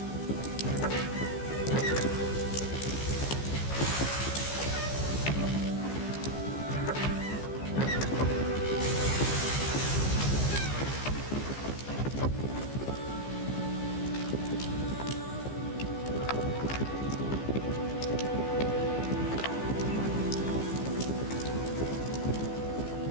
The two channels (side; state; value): right; late; 15 ms